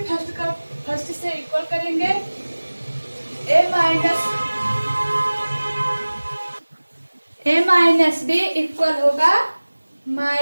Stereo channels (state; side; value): inverted; both; correlation -1.00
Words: से इक्वल करेंगे। a माइनस बी इक्वल होगा